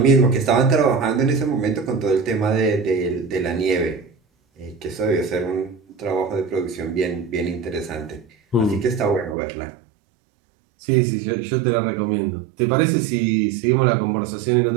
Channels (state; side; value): drops out; left; at 9.3 s